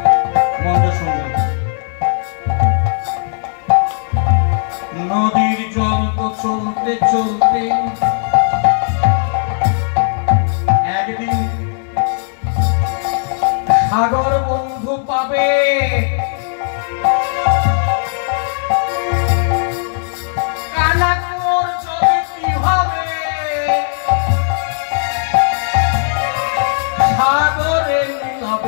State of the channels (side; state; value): right; silent; digital silence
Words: মনে শুনবেন, নদীর জল তো চলতে চলতে একদিন সাগর বন্ধু পাবে। কানাকুর জলে কি হবে, সাগরে